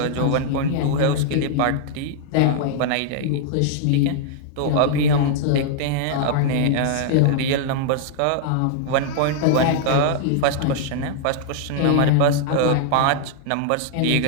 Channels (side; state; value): both; different; correlation -0.01